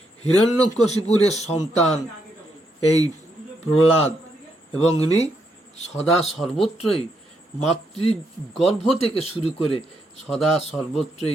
হিরণ্যকশিপুর সন্তান এই প্রহ্লাদ, এবং ইনি সদা সর্বত্রই মাতৃগর্ভ থেকে শুরু করে সদা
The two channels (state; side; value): normal; both; correlation 0.78